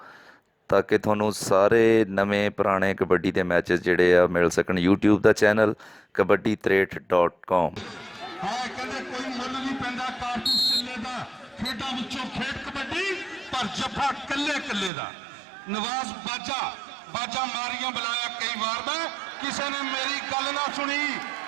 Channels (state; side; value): drops out; left; at 14.9 s